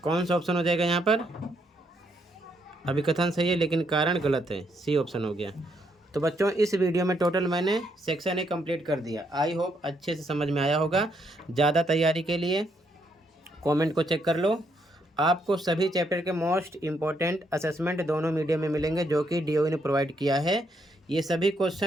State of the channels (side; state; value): both; normal; correlation 0.75